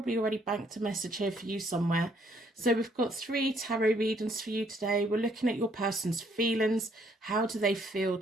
already banked a message here for you somewhere. So we've got 3 tarot readings for you today. We're looking at your person's feelings. How do they feel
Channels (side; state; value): both; normal; correlation 0.67